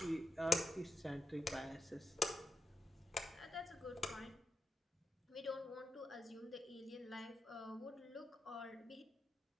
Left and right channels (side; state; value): both; normal; correlation 0.87